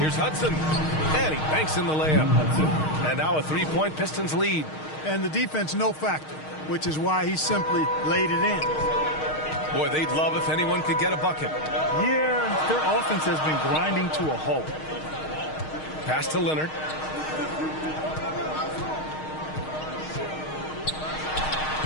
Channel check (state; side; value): late; right; 6.4 ms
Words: Hudson. And he banks in the layup. And now a 3-point Pistons lead. And the defense no factor, which is why he simply laid it in. Boy, they'd love if anyone could get a bucket. Yeah, their offense has been grinding to a halt. Pass to Leonard.